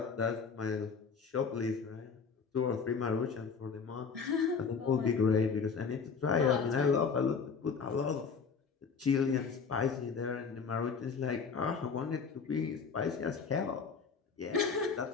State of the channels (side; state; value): right; quieter; 5.6 dB